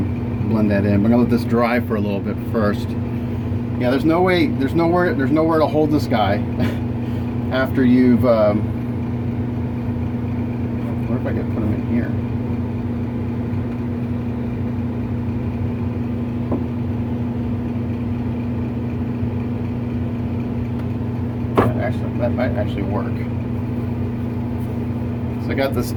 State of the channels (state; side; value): identical; both; correlation 1.00